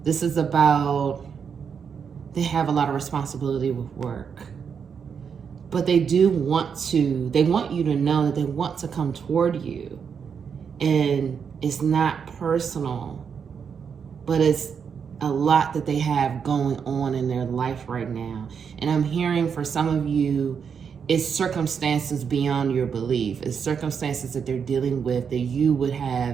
This is about, they have a lot of responsibility with work. But they want you to know that they want to come toward you. And it's not personal, but it's a lot that they have going on in their life right now. And I'm hearing for some of you, it's circumstances beyond your belief. It's circumstances that they're dealing with that you would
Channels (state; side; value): quieter; left; 6.7 dB